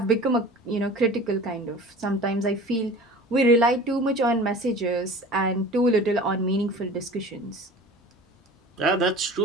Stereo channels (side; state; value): both; normal; correlation 0.40